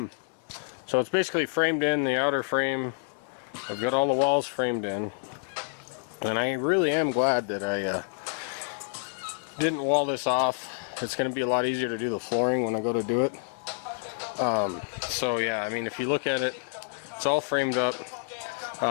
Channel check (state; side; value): silent; right; 59 dB below the other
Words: So it's basically framed in, the outer frame. I've got all the walls framed in, and I really am glad that I didn't wall this off. It's going to be a lot easier to do the flooring when I go to do it. So yeah, I mean, if you look at it, it's all framed up.